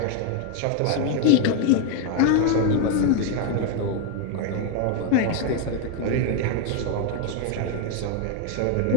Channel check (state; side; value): different; both; correlation 0.01